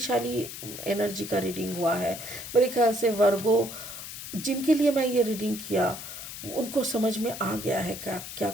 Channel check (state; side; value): noise; left; hiss, 10 dB below the sound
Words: एनर्जी का रीडिंग हुआ है मेरे ख्याल से। वर्गो जिनके लिए मैं ये रीडिंग किया उनको समझ में आ गया है क्या क्या